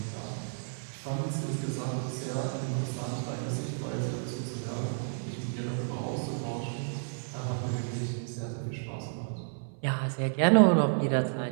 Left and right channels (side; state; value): left; silent; 57 dB below the other